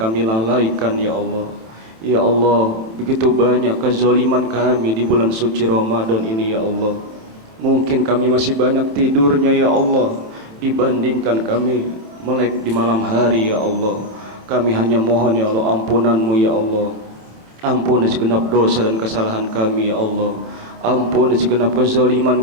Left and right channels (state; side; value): late; left; 27 ms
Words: lalaikan ya Allah. Ya Allah, begitu banyak kezaliman kami di bulan suci Ramadan ini ya Allah. Mungkin kami masih banyak tidurnya ya Allah, dibandingkan kami melek di malam hari ya Allah. Kami hanya mohon ya Allah ampunan-Mu ya Allah. Ampuni segenap dosa dan kesalahan kami ya Allah. Ampuni segenap kezaliman